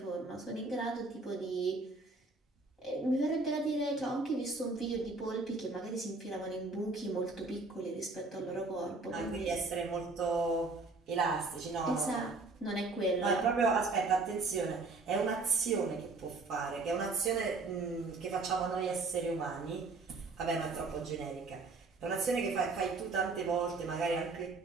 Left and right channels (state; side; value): quieter; left; 3.7 dB